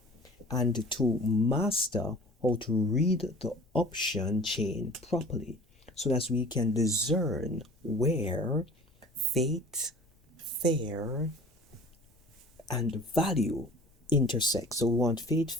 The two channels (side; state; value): both; normal; correlation 0.44